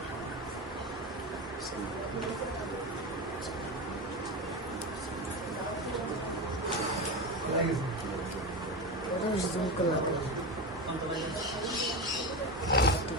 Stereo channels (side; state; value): both; normal; correlation 0.20